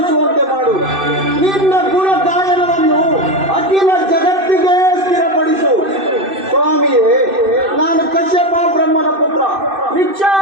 ಮಾಡು. ನಿನ್ನ ಗುಣ ಗಾಯನವನ್ನು ಅಖಿಲ ಜಗತ್ತಿಗೆ ಸ್ಥಿರಪಡಿಸು. ಸ್ವಾಮಿಯೇ, ನಾನು ಕಶ್ಯಪ ಬ್ರಹ್ಮನ ಪುತ್ರ,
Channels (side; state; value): left; late; 2.6 ms